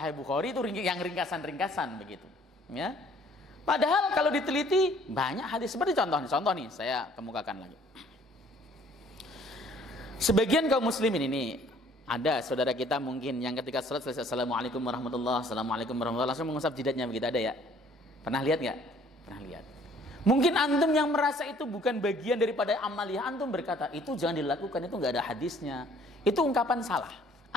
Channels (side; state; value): both; normal; correlation 0.58